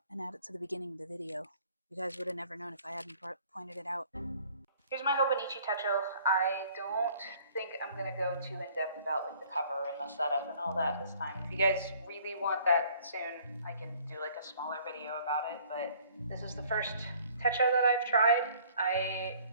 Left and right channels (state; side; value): inverted; both; correlation -0.56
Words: and add it to the beginning of the video. You guys would have never known if I hadn't pointed it out. Here's my Hobonichi Techo. I don't think I'm going to go too in-depth about like the cover and the setup and all that this time. If you guys really want that soon, I can do like a smaller video about it, but this is the first Techo that I've tried. I